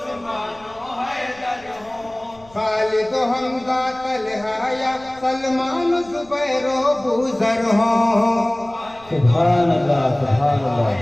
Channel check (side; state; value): left; noise; rumble, 26 dB below the sound